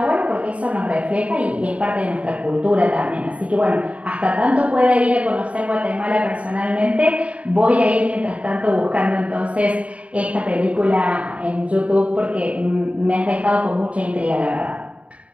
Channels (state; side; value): late; left; 0.065 ms